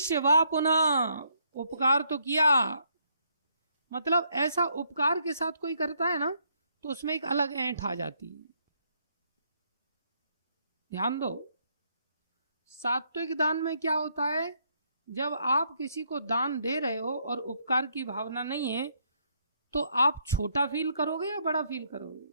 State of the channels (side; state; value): both; inverted; correlation -0.72